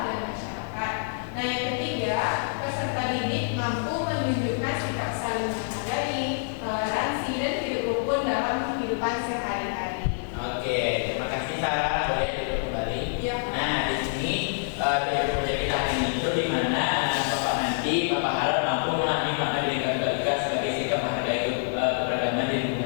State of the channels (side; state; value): right; silent; digital silence